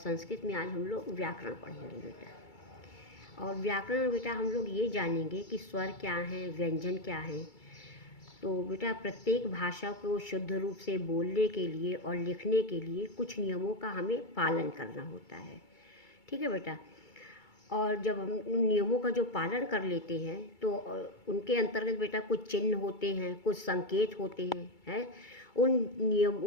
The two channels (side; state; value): right; late; 2.3 ms